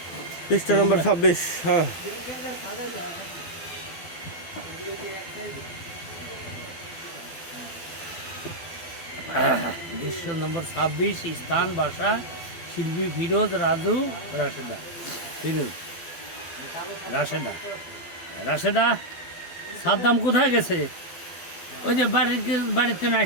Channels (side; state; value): right; late; 12 ms